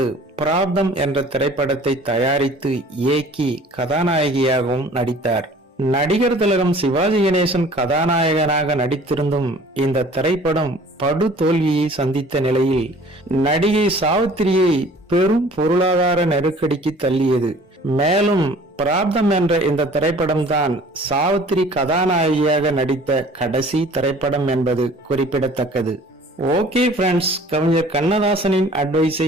பிராப்தம் என்ற திரைப்படத்தை தயாரித்து இயக்கி கதாநாயகியாகவும் நடித்தார். நடிகர் திலகம் சிவாஜி கணேசன் கதாநாயகனாக நடித்திருந்தும் இந்த திரைப்படம் படு தோல்வியை சந்தித்த நிலையில் நடிகை சாவித்திரியை பெரும் பொருளாதார நெருக்கடிக்கு தள்ளியது. மேலும் பிராப்தம் என்ற இந்த திரைப்படம் தான் சாவித்திரி கதாநாயகியாக நடித்த கடைசி திரைப்படம் என்பது குறிப்பிடத்தக்கது. ஓகே ஃப்ரெண்ட்ஸ், கவிஞர் கண்ணதாசனின் அட்வைஸை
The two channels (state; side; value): normal; both; correlation 0.49